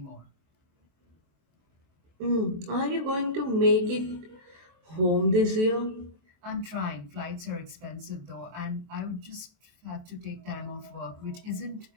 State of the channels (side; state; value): left; late; 23 ms